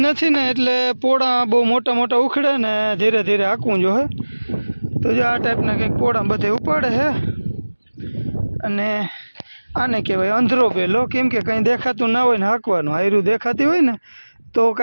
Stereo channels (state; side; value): inverted; both; correlation -1.00